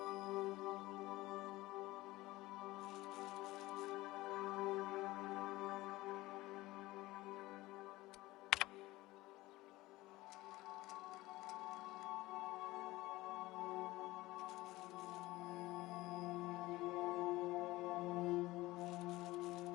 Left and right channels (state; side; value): quieter; right; 18.9 dB